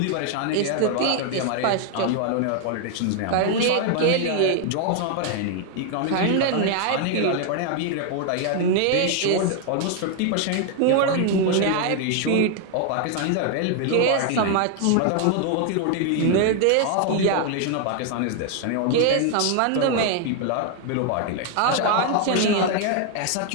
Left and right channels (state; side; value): different; both; correlation 0.00